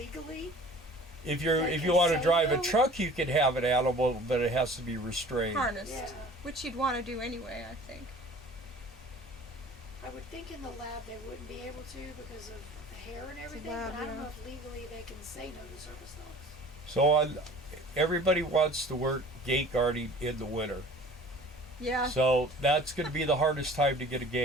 If you Like want to say drive a no? truck, you can have an animal, but it has to be restrained. Harnessed. Yeah. Which you'd want to do anyway, I think. I would think in the lab they wouldn't be able to because of the hair and everything, lab, but I don't yeah. know if legally they can say no to service dogs. So everybody wants to work gate guarding in the winter. Yeah. So that's going to be the hardest time to get a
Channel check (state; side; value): normal; both; correlation 0.46